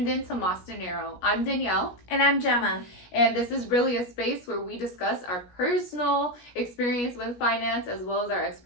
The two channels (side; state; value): right; late; 17 ms